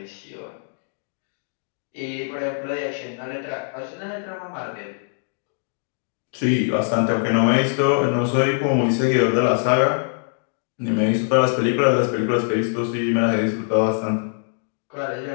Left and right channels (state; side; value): silent; right; digital silence